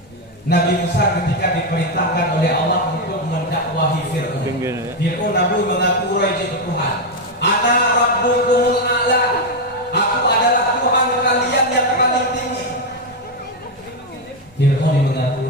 Nabi Musa ketika diperintahkan oleh Allah untuk mendakwahi Fir'aun. Fir'aun Nabi mengaku raja Tuhan. Ana rabbukumul a'la. Aku adalah Tuhan kalian yang paling tinggi. Fir'aun mengaku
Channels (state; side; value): normal; both; correlation 0.05